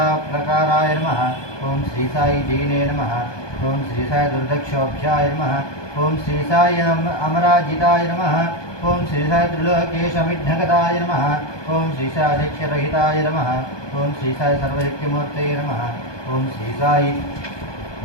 నమః ఓం శ్రీ సాయి జైనే నమః ఓం శ్రీ సాయి దుర్దక్షోభ్యాయ నమః ఓం శ్రీ సాయి అమరాజితాయ నమః ఓం శ్రీ సాయి త్రిలోకేశమిఘ్నగతాయ నమః ఓం శ్రీ సాయి అధ్యక్షరహితాయ నమః ఓం శ్రీ సాయి సర్వశక్తిమూర్తయే నమః ఓం శ్రీ సాయి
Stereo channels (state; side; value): late; right; 1.2 ms